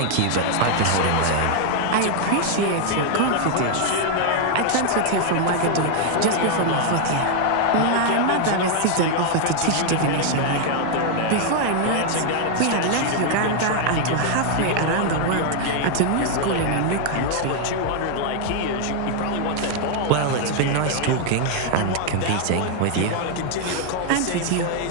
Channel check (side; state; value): both; different; correlation 0.00